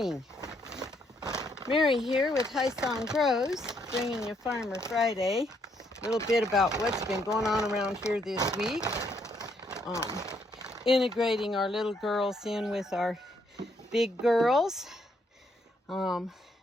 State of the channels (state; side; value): normal; both; correlation 0.72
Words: morning. Mary here with High Song Grows, bringing you Farmer Friday. A little bit about what's been going on around here this week. Integrating our little girls in with our big girls. Then